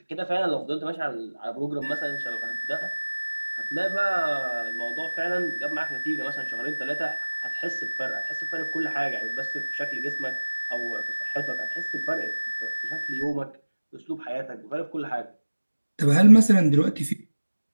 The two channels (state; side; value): inverted; both; correlation -1.00